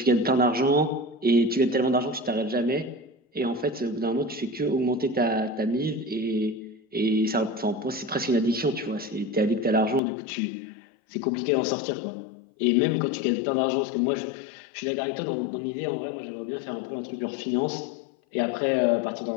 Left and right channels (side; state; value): right; drops out; at 10.0 s